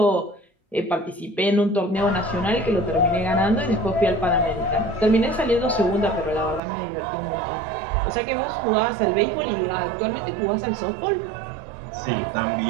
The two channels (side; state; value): left; drops out; at 6.6 s